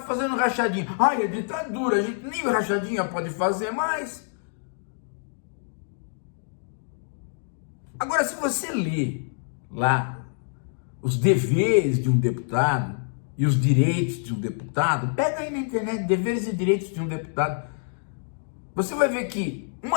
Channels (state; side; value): silent; right; digital silence